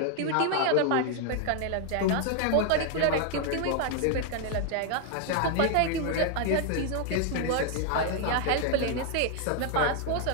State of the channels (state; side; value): different; both; correlation 0.00